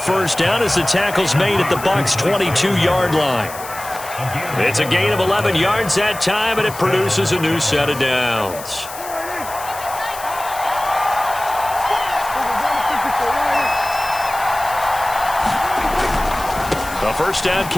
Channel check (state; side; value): noise; left; hiss, 13 dB below the sound